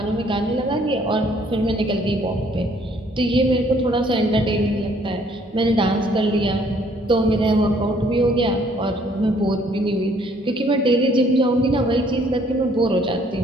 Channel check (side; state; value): both; normal; correlation 0.63